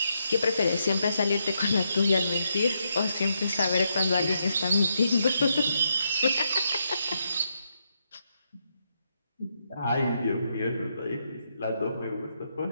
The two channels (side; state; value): both; inverted; correlation -0.80